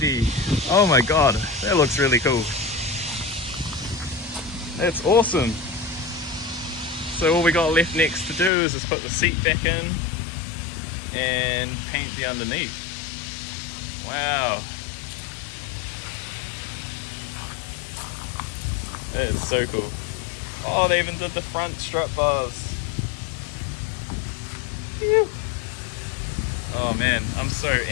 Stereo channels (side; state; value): right; drops out; at 8.5 s